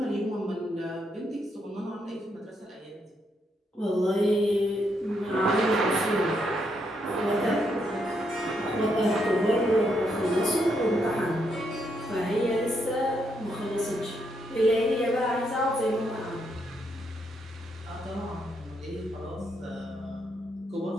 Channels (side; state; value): both; normal; correlation 0.77